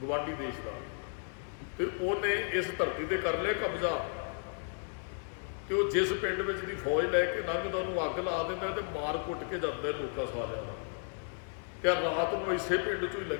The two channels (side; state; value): right; silent; 55 dB below the other